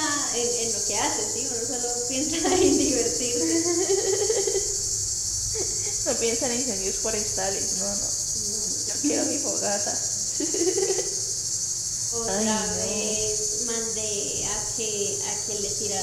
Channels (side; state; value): both; identical; correlation 1.00